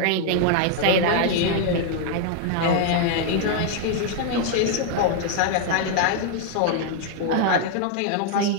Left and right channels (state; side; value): different; both; correlation 0.00